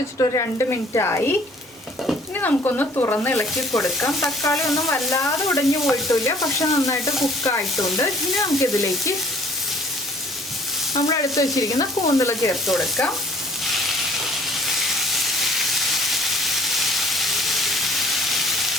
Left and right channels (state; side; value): normal; both; correlation 0.54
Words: ഒരു 2 മിനിറ്റ് ആയി. ഇനി നമുക്കൊന്ന് തുറന്ന് ഇളക്കി കൊടുക്കാം. തക്കാളി ഒന്നും വല്ലാതെ ഉടഞ്ഞു പോയിട്ടില്ല, പക്ഷെ നന്നായിട്ട് കുക്കായിട്ടുണ്ട്. ഇനി നമുക്കിതിലേക്ക് നമ്മൾ എടുത്ത് വെച്ചിരിക്കുന്ന കൂന്തൽ ചേർത്ത് കൊടുക്കാം.